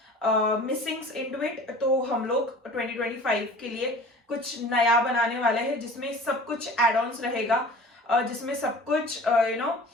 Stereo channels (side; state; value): both; normal; correlation 0.43